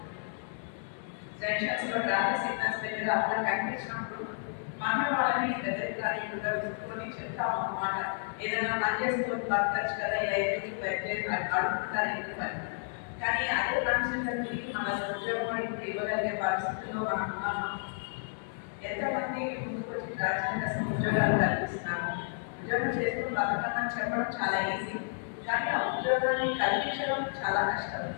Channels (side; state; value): right; silent; digital silence